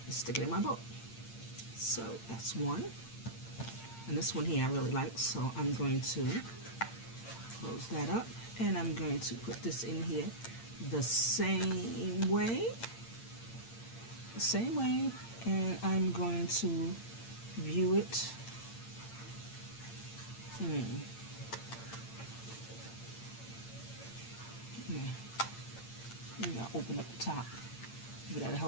and stick it in my book. So that's one. And this one here I really like, so I'm going to close that up. And I'm going to put this in here the same way. And I'm going to view it. Maybe I'll open up the top. Maybe that'll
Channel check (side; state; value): right; late; 8.8 ms